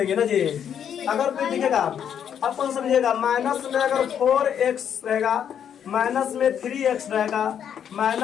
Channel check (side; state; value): right; quieter; 8.7 dB